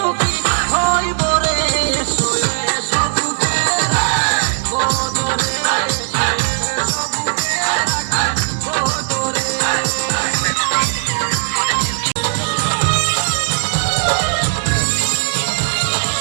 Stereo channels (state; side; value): silent; left; digital silence